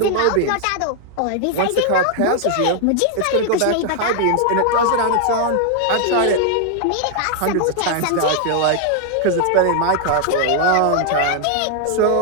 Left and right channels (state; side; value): different; both; correlation 0.00